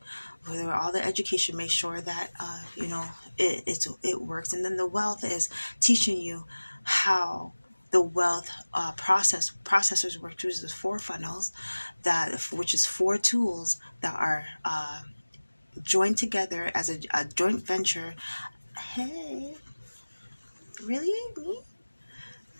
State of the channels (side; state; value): both; inverted; correlation -1.00